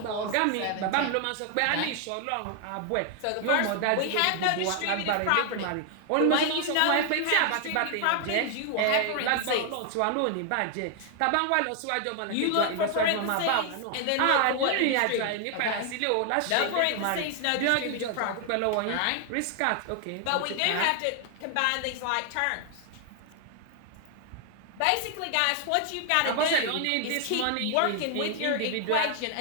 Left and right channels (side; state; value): both; different; correlation 0.00